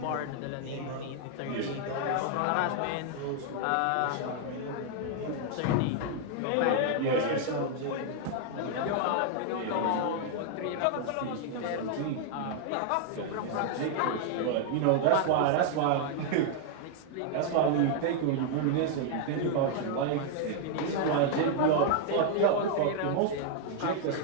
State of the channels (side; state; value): both; different; correlation 0.00